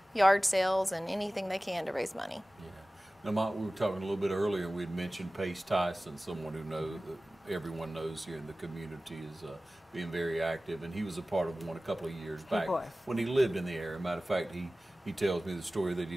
yard sales and anything they can to raise money. Yeah. Now, Mott, we were talking a little bit earlier, we had mentioned Pace Tyson, someone who everyone knows here in the community is being very active, and he was a part of one a couple of years back when he lived in the area. Matter of fact, he tells me the story that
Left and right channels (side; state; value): both; normal; correlation 0.97